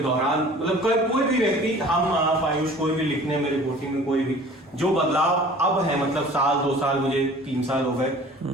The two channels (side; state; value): both; normal; correlation 0.46